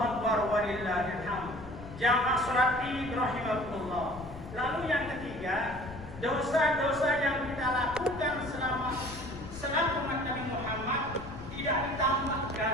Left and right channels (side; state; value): left; noise; rumble, 14 dB below the sound